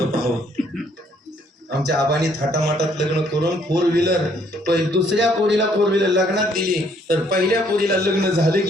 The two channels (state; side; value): normal; both; correlation 0.65